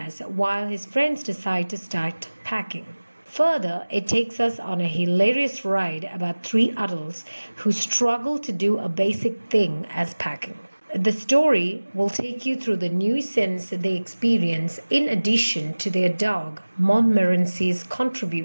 while his friends decide to start packing. Further, it takes us on a hilarious ride about three adults who struggle to do a basic thing as packing. The story will take you through the new sense they experience in addition to their dog, Montmorency's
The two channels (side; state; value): both; inverted; correlation -1.00